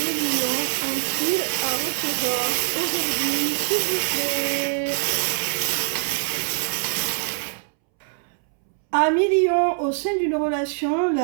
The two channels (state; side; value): silent; left; 63 dB below the other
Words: lions ont-ils à recevoir aujourd'hui, s'il vous plaît? Amis lions, au sein d'une relation,